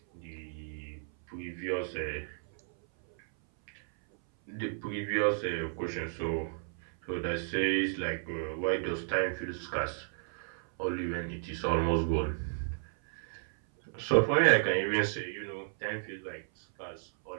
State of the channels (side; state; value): left; silent; 56 dB below the other